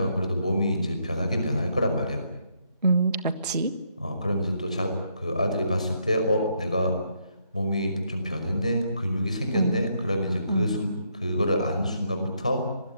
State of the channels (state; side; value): inverted; both; correlation -0.74